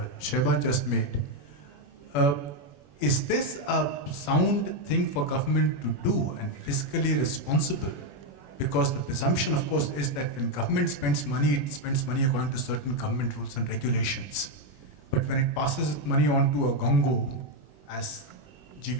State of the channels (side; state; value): right; late; 21 ms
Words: Sheba just made, is this a sound thing for government to do and fiscally responsible? Because the presumption, of course, is that when government spends money, it spends money according to certain government rules and regulations. But when it passes money on to a gongo, as